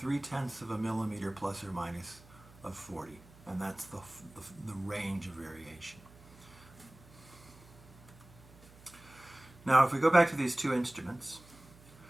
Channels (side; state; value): right; noise; hum, 23 dB below the sound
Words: of a millimeter plus or minus of 40. And that's the range of variation. Now, if we go back to these two instruments,